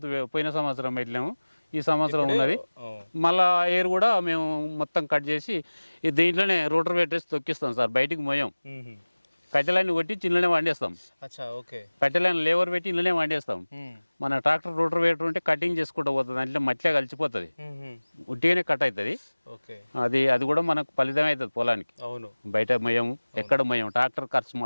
పోయిన సంవత్సరం పెట్టలేము, ఈ సంవత్సరం ఉన్నది. మళ్ళీ ఎయిర్ కూడా మేము మొత్తం కట్ చేసి దీంట్లోనే రోటర్ పెట్టేసి తొక్కిస్తాం సార్. బయటికి మోయం, కట్టెలన్నీ కొట్టి ఇంట్లోనే వండేస్తాం. కట్టెలైన లేబర్ పెట్టి ఇంట్లోనే వండేస్తాం. మన ట్రాక్టర్ రోటర్ వేటర్ ఉంటే కటింగ్ చేసుకుంటూ పోతుంది, అంటే మట్టిలో కలిసిపోతుంది, ఉట్టిగానే కట్ అవుతుంది. అది కూడా మనకు ఫలితం అవుతుంది పొలానికి. బయట మోయం, ఎక్కడ మోయం, ట్రాక్టర్ ఖర్చు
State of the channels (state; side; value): inverted; both; correlation -1.00